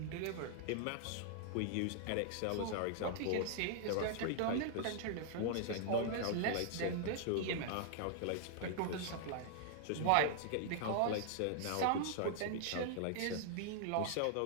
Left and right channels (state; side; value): different; both; correlation 0.00